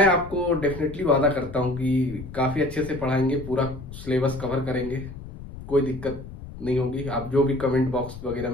आपको डेफिनेटली वादा करता हूं कि काफ़ी अच्छे से पढ़ाएंगे, पूरा सिलेबस कवर करेंगे, कोई दिक्कत नहीं होगी। आप जो भी कमेंट बॉक्स वगैरह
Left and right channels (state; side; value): noise; left; rumble, 13 dB below the sound